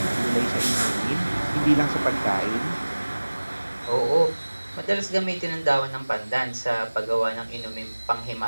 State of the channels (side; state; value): both; inverted; correlation -1.00